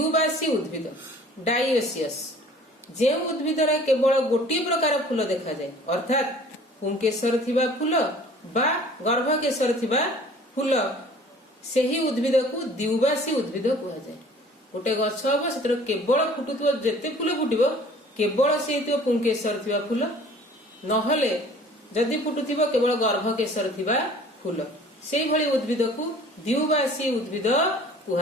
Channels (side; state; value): both; normal; correlation 0.50